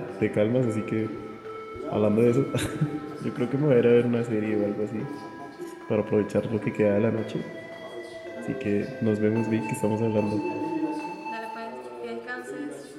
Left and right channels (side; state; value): both; identical; correlation 1.00